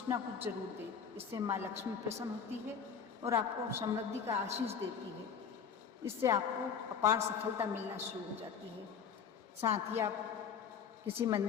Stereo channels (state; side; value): quieter; right; 6.9 dB